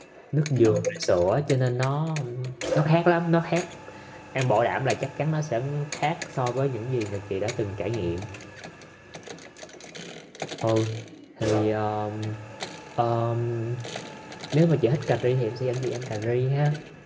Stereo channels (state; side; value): identical; both; correlation 1.00